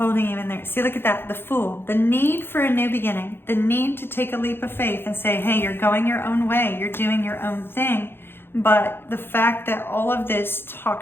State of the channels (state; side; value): late; right; 0.11 ms